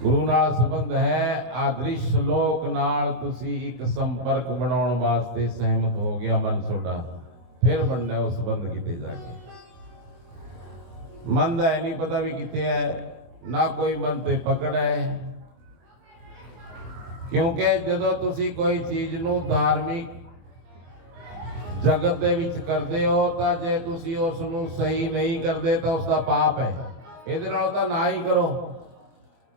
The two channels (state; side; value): late; left; 24 ms